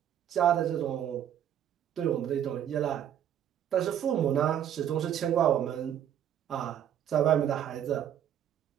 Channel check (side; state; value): left; quieter; 10.0 dB